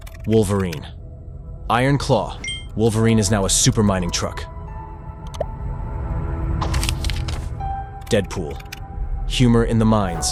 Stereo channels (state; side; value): identical; both; correlation 1.00